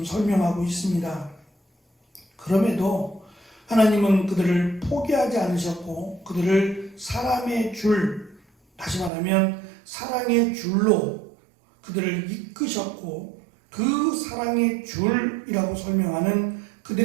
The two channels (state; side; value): drops out; left; at 9.1 s